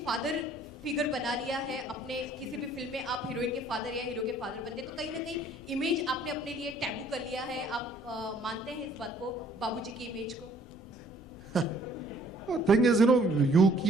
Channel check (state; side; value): normal; both; correlation 0.59